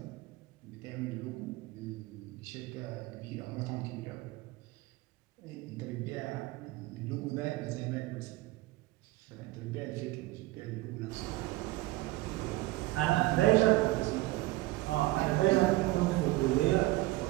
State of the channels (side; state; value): left; quieter; 19.1 dB